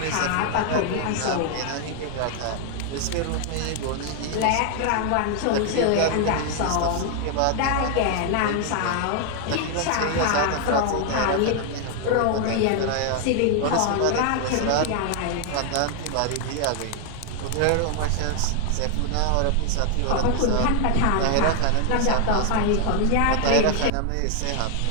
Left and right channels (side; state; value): both; different; correlation 0.00